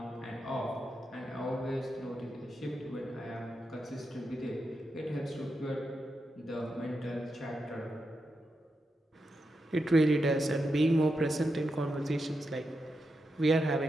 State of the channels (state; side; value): normal; both; correlation 0.87